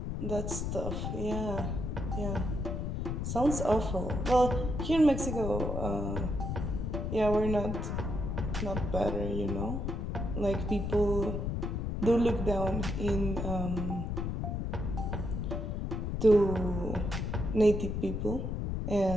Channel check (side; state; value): left; noise; rumble, 2 dB below the sound